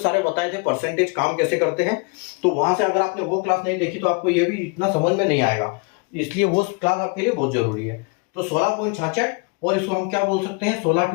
बताए थे, परसेंटेज काम कैसे करते हैं, तो वहां से अगर आपने वो क्लास नहीं देखी तो आपको ये भी इतना समझ में नहीं आएगा, इसलिए वो क्लास आपके लिए बहुत जरूरी है। तो 16.66, और इसको हम क्या बोल सकते हैं,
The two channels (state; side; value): quieter; right; 30.3 dB